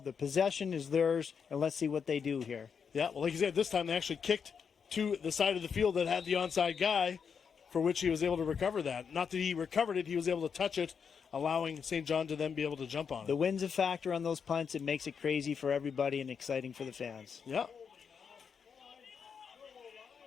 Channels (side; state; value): right; quieter; 6.5 dB